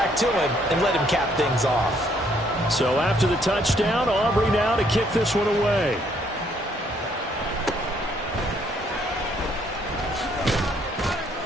to him, and let him cap things off. So after the touchdown, Aubrey now to kick this one away.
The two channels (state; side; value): normal; both; correlation 0.67